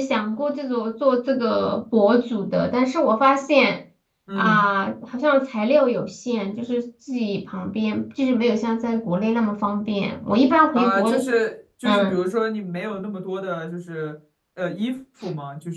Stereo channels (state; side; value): identical; both; correlation 1.00